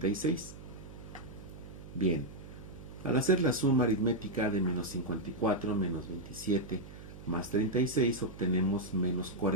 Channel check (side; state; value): right; noise; hum, 15 dB below the sound